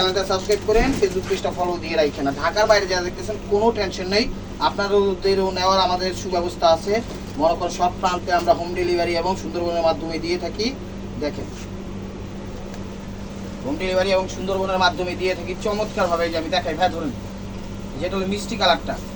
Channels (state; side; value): identical; both; correlation 1.00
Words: সাবস্ক্রাইব করেন, ফেসবুক পেজটা ফলো দিয়ে রাখেন। না ঢাকার বাইরে যারা দেখতেছেন কোনো টেনশন নেই, আপনাদেরও নেওয়ার আমাদের সুব্যবস্থা আছে। মনে করেন সব প্রান্তে আমরা হোম ডেলিভারি এবং সুন্দরবনের মাধ্যমে দিয়ে থাকি। দেখেন, হোম ডেলিভারি এবং সুন্দরবনের মাধ্যমে দিয়ে থাকি চমৎকারভাবে। যে আমি দেখাই ভাই, ধরুন যেটা হলো মিষ্টি কালারটা,